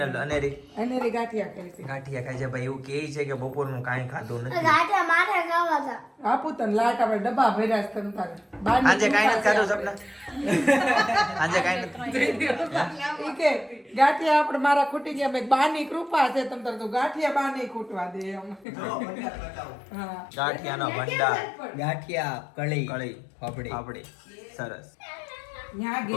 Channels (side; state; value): right; drops out; at 18.7 s